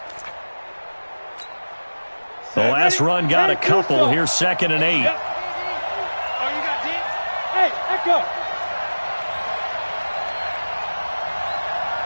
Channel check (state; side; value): inverted; both; correlation -1.00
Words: The last run got a couple. Here's 2nd and 8. Oh, you got D? Hey, echo.